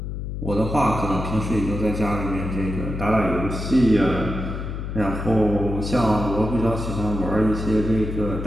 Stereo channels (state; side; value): noise; left; hum, 5 dB below the sound